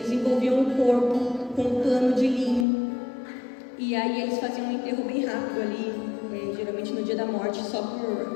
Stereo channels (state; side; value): drops out; right; at 2.7 s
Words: envolviam o corpo com um pano de linho e aí eles faziam um enterro bem rápido ali, geralmente no dia da morte, só